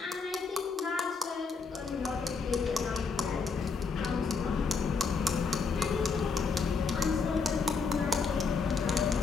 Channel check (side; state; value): right; quieter; 4.7 dB